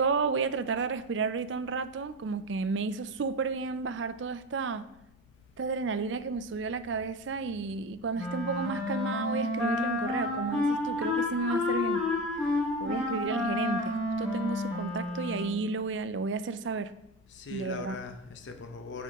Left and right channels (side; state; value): left; noise; rumble, 29 dB below the sound